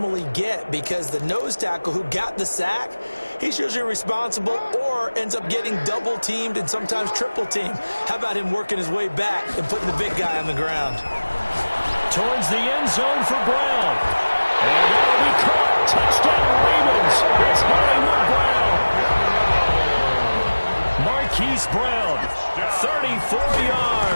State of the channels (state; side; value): inverted; both; correlation -1.00